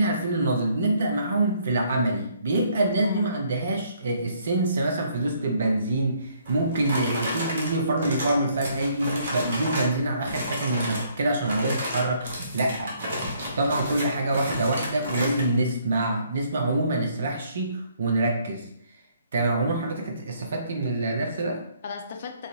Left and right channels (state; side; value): inverted; both; correlation -0.66